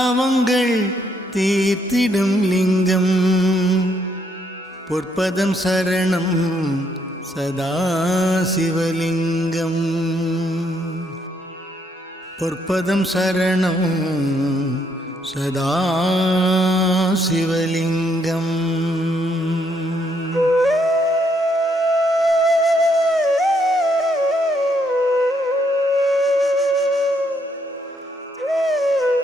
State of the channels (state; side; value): normal; both; correlation 0.72